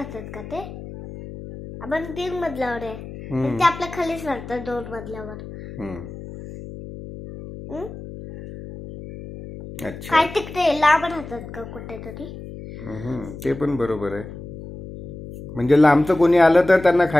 का ते? आपण 3 मजल्यावर आहे. ते आपल्या खालीच राहतात 2 मजल्यावर. अच्छा काय तिकडे लांब राहतात का कुठेतरी? ते पण बरोबर आहे. म्हणजे लांबचं कोणी आलं तर त्यांना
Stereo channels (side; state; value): left; noise; hum, 12 dB below the sound